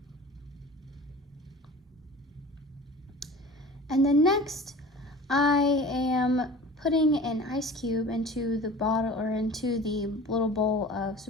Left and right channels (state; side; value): normal; both; correlation 0.39